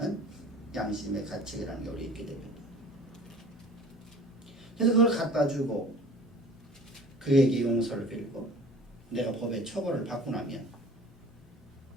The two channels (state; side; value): normal; both; correlation 0.46